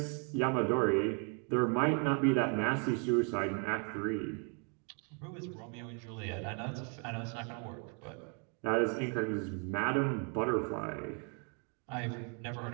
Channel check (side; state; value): left; quieter; 38.4 dB